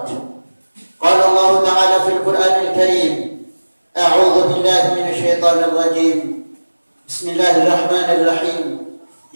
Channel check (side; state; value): both; inverted; correlation -1.00